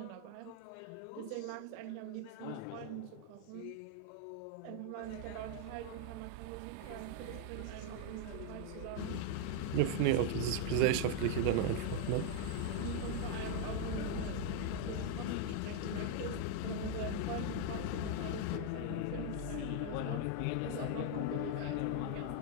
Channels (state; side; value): different; both; correlation 0.00